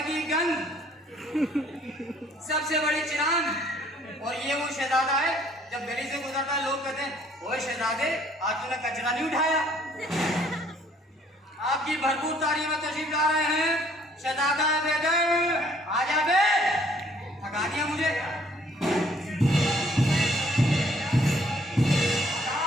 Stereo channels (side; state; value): both; normal; correlation 0.61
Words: की गंग, सबसे बड़ी चिरांद। और ये वो शहजादा है, जब गली से गुजरता है लोग कहते हैं ओए शहजादे आज तूने कचरा नहीं उठाया। आपकी भरपूर तारीफ में तशरीफ ला रहे हैं शहजादा बैदर। आजा बे, थका दिया मुझे।